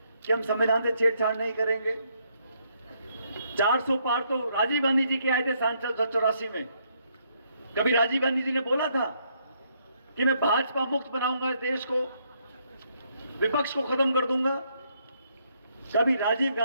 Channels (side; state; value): both; inverted; correlation -0.73